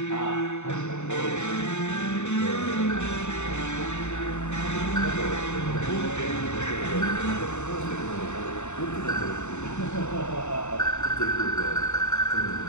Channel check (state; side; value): late; right; 0.83 ms